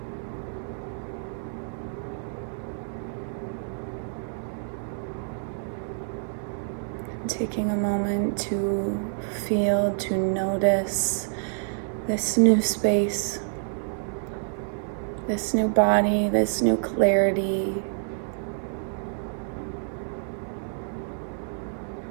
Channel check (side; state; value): left; silent; 60 dB below the other